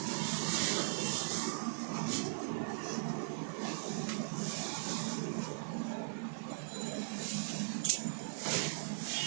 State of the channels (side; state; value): left; silent; digital silence